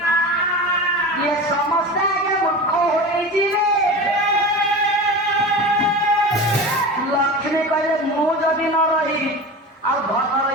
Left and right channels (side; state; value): both; normal; correlation 0.30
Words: ଇଏ ସମସ୍ତେ ଆଗେ ମୂର୍ଖ ହୋଇଯିବେ ଲକ୍ଷ୍ମୀ କହିଲେ ମୁଁ ଯଦି ନ ରହିବି ଆଉ ଧନ